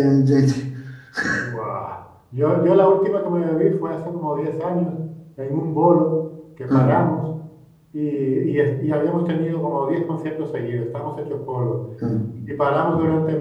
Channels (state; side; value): identical; both; correlation 1.00